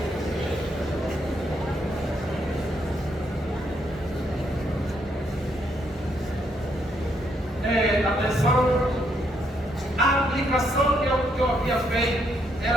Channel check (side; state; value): both; normal; correlation 0.74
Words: Atenção, a aplicação que eu havia feito